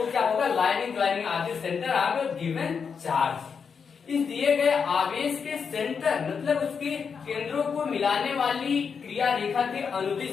क्या होगा, लाइनिंग ज्वाइनिंग आदि सेंटर ऑफ गिवन चार्ज। इस दिए गए आवेश के सेंटर मतलब उसके केंद्रों को मिलाने वाली क्रिया रेखा के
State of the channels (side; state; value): right; quieter; 6.1 dB